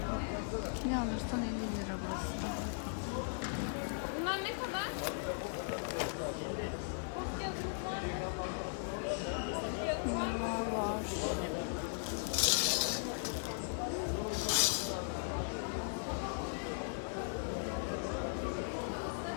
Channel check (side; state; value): right; silent; 52 dB below the other